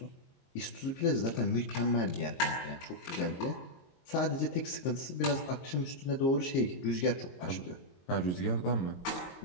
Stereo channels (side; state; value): right; late; 22 ms